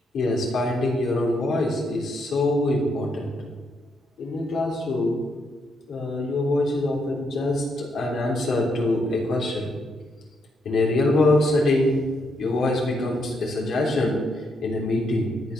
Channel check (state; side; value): normal; both; correlation 0.77